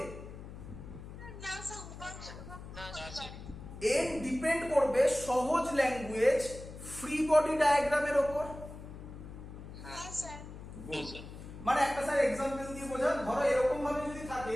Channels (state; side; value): noise; left; hum, 13 dB below the sound